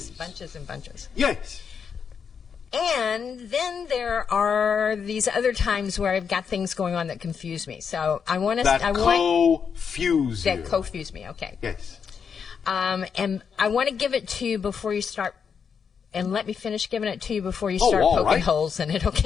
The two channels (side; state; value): right; quieter; 6.6 dB